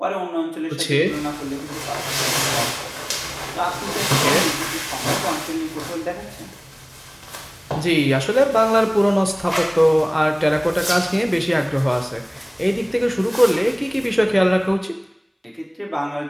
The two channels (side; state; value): both; identical; correlation 1.00